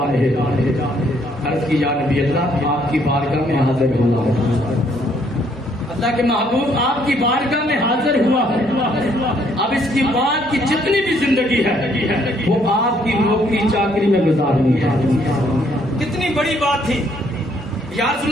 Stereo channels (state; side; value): normal; both; correlation 0.67